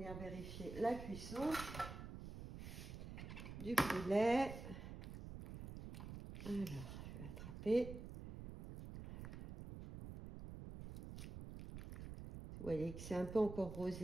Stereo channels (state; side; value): noise; right; rumble, 9 dB below the sound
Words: vérifier la cuisson du poulet. Alors, je vais l'attraper. Vous voyez que c'est un peu encore